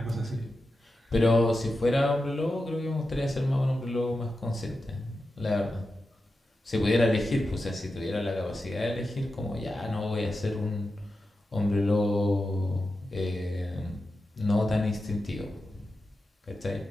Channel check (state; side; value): normal; both; correlation 0.90